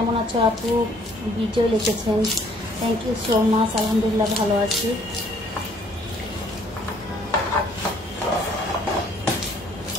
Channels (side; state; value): both; normal; correlation 0.61